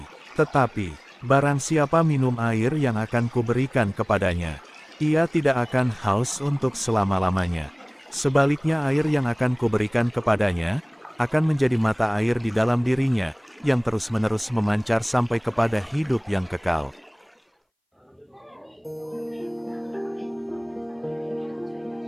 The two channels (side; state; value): both; identical; correlation 1.00